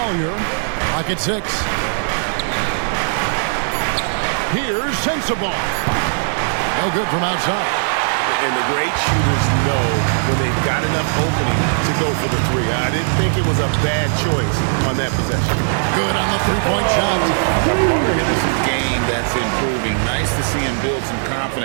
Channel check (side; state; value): left; silent; digital silence